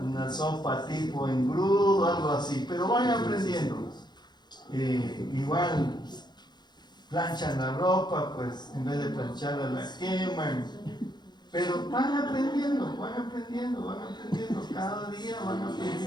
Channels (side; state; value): right; late; 0.21 ms